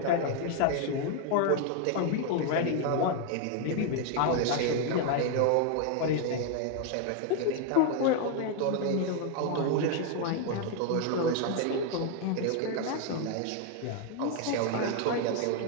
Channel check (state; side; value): different; both; correlation 0.01